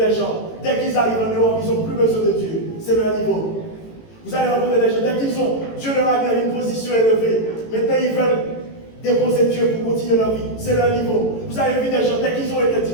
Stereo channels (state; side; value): late; right; 18 ms